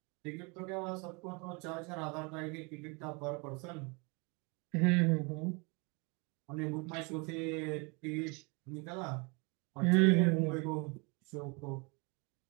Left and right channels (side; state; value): left; quieter; 30.5 dB